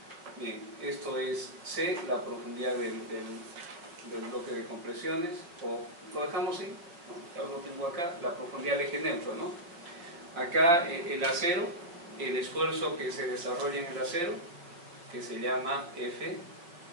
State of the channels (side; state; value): left; late; 5.7 ms